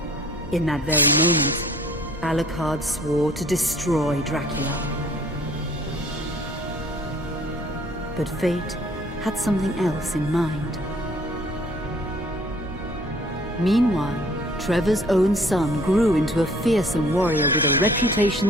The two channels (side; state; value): both; normal; correlation 0.56